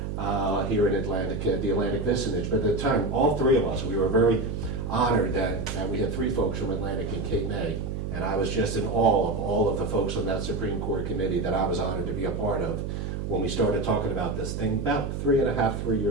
here in Atlantic, the Atlantic Vicinage. But at the time, all three of us, we were very honored that we had three folks from Atlantic and Cape May, and I was just in awe of all of the folks on that Supreme Court committee that I was honored to be a part of when we started talking about this thing about 3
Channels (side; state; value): right; noise; hum, 4 dB below the sound